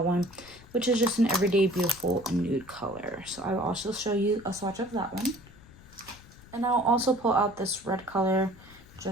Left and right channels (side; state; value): left; noise; rumble, 22 dB below the sound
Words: one, which is just an everyday beautiful nude color. So I will also show you a swatch of that one. And I'll also pull out this red color